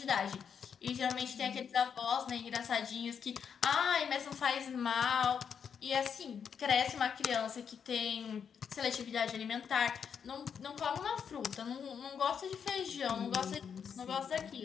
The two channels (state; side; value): quieter; right; 7.2 dB